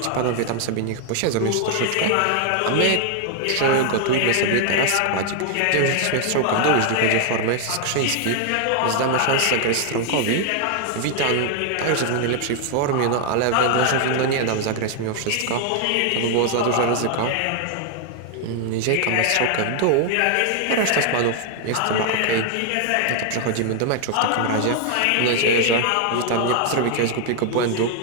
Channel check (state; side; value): different; both; correlation 0.00